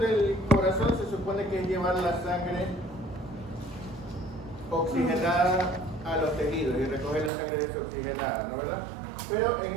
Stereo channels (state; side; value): drops out; left; at 7.3 s